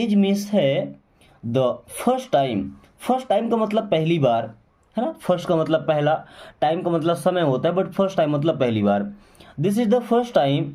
मीन्स है, the first time, first time का मतलब पहली बार, है ना। फर्स्ट का मतलब पहला, टाइम का मतलब समय होता है, बट फर्स्ट टाइम मतलब पहली बार। This is the first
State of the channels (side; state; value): both; identical; correlation 1.00